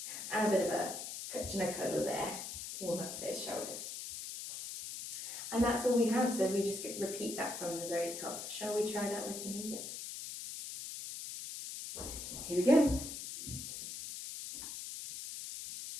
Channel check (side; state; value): left; noise; hiss, 7 dB below the sound